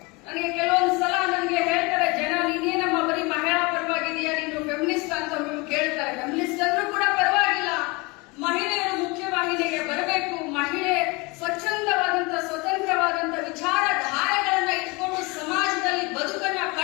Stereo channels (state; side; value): quieter; right; 26.4 dB